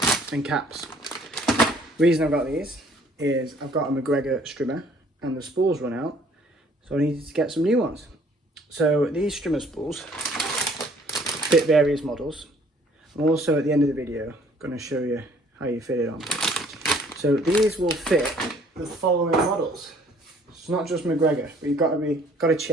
and caps. The reason I've got these is I've got a McGregor strimmer and the spools run out, so I needed to get some new ones. So these strimmer spools fit various models. I'm also at the end of the video going to show you how you fit it on. So these will fit the following models. It's not just McGregor, but you've got to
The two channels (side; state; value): both; normal; correlation 0.58